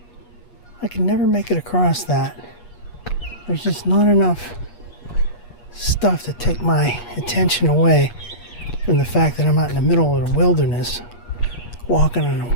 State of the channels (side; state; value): right; late; 8.4 ms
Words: I can never make it across that. There's just not enough stuff to take my attention away from the fact that I'm out in the middle of the wilderness, walking in